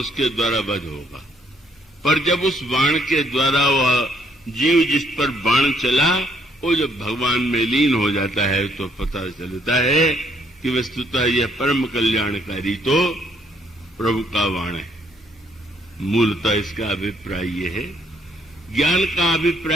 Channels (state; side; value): normal; both; correlation 0.68